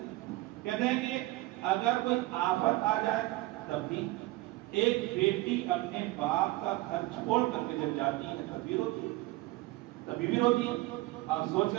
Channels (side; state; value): left; quieter; 19.4 dB